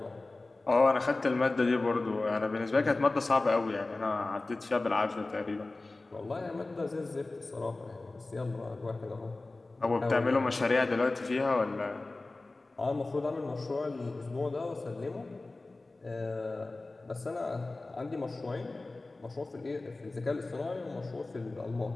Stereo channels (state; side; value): quieter; right; 3.2 dB